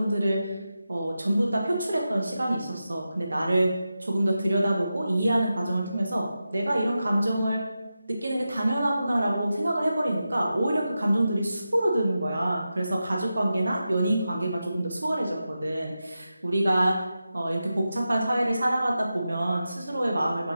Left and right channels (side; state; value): both; inverted; correlation -0.91